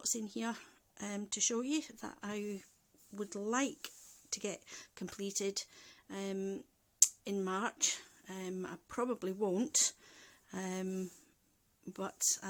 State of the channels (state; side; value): identical; both; correlation 1.00